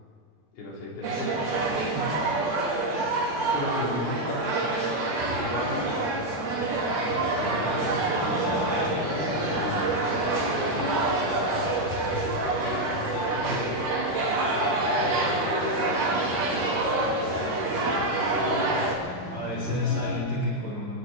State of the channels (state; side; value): normal; both; correlation 0.02